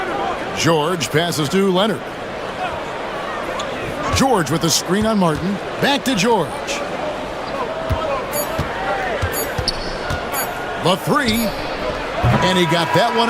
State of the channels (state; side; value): identical; both; correlation 1.00